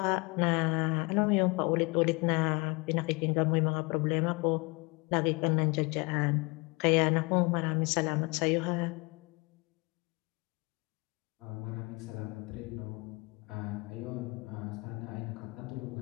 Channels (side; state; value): right; quieter; 27.6 dB